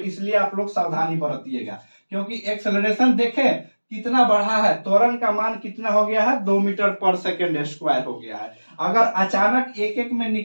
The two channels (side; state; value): both; inverted; correlation -1.00